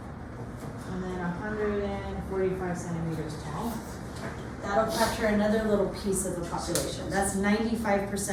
and then 145 centimeters tall. That'll capture another little piece of the population. That's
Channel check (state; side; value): identical; both; correlation 1.00